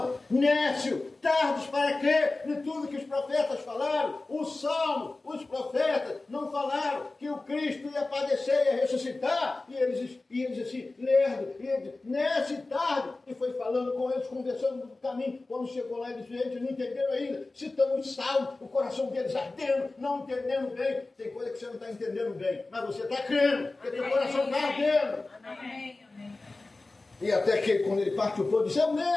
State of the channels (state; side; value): quieter; right; 3.3 dB